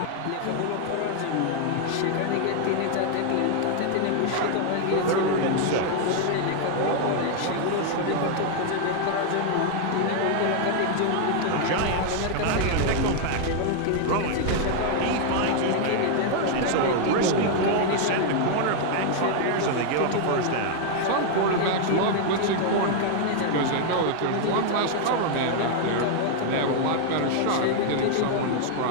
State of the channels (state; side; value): different; both; correlation 0.00